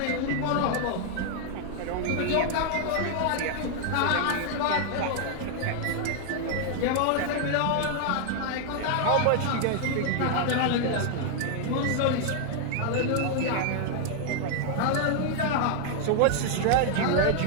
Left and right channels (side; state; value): both; different; correlation 0.00